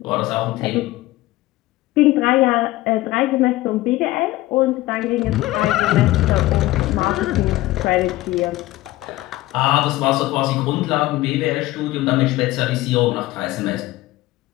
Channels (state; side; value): quieter; right; 17.5 dB